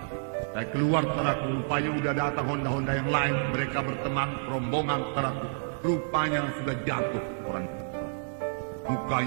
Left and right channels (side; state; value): left; silent; digital silence